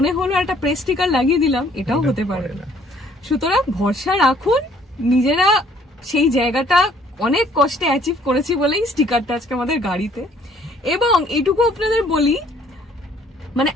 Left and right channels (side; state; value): both; normal; correlation 0.61